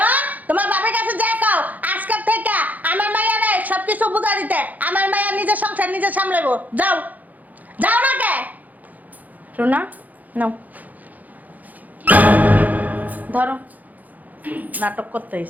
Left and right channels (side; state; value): left; late; 0.080 ms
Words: তোমার বাবার কাছে যাই কও আজকের থেকে আমার মাইয়ারে সবকিছু বুঝা দিতে। আমার মাইয়া নিজের সংসার নিজে সামলাবো। যাও, যাও না কে? রুনা নাও, ধরো। নাটক করতে